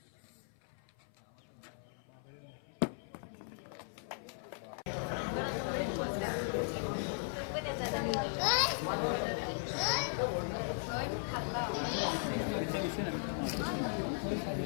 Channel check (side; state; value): right; silent; 53 dB below the other